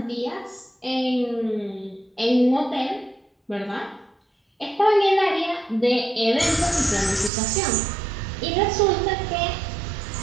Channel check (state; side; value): drops out; left; at 7.3 s